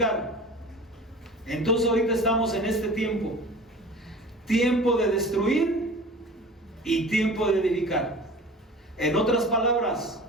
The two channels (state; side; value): normal; both; correlation 0.39